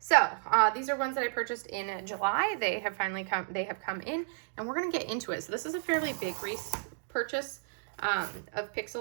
these are ones that I purchased in July. They have finally come in, and we're gonna get into it. So this is a fairly big purchase of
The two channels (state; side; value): silent; left; digital silence